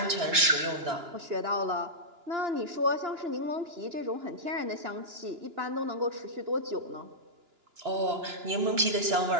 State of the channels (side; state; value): left; late; 2.9 ms